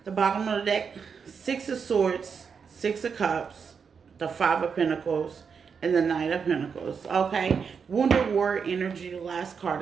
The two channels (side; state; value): left; quieter; 6.2 dB